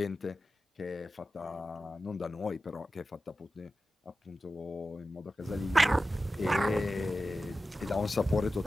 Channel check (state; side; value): normal; both; correlation 0.93